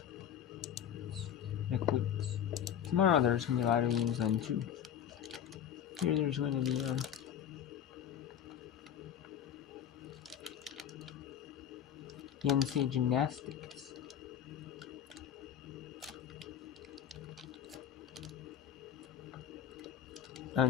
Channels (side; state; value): right; quieter; 9.4 dB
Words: next week. Tomorrow there's going to be a lot of games on too. Here there's going to be the NCAA gymnastics.